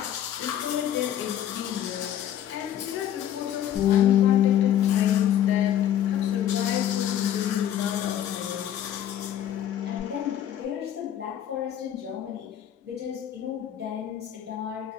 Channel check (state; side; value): quieter; right; 10.8 dB